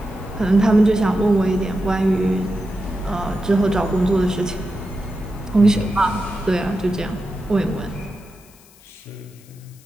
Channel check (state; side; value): noise; left; hiss, 26 dB below the sound